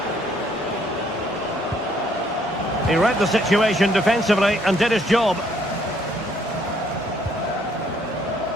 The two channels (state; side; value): normal; both; correlation 0.67